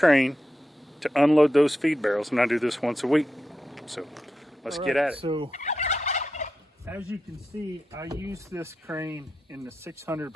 to unload those feed barrels, and I do this once a week. So let's get at it. So as you can see, I use this crane in the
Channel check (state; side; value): normal; both; correlation 0.88